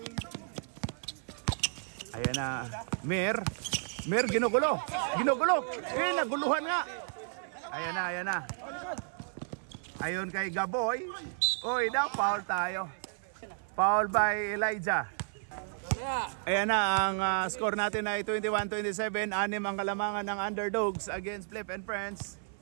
Ayan na. Mir, ginugulo. Naguluhan nga. Ayan na. Ayun kay Gaboy. Uy, daw, foul tayo. Foul by Elijah. Ayan na, ang score natin ay 21-27. 6 ang kalamangan ng Underdogs against Flip and Friends.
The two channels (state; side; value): silent; left; 56 dB below the other